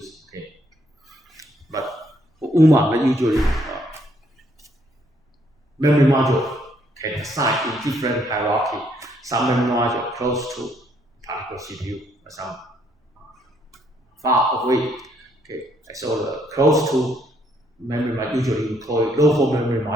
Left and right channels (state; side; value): normal; both; correlation 0.70